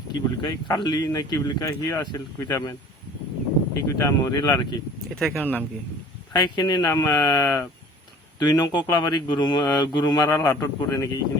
কি বুলি কয় কালি নে কি বুলি কয় সি আছিল কেইটামান, সেইকেইটা মৰিল আৰু কি। এই ঠাইখনৰ নাম কি? ঠাইখিনিৰ নাম 2 নং কোকলাবাৰী গুৰুমাৰা লাটত পৰে নেকি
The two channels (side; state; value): both; normal; correlation 0.48